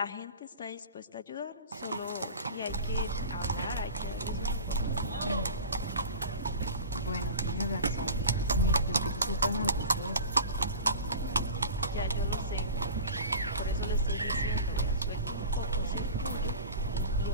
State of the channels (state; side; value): inverted; both; correlation -0.35